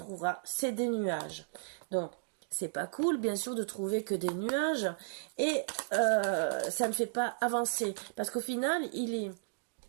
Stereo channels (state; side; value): silent; left; digital silence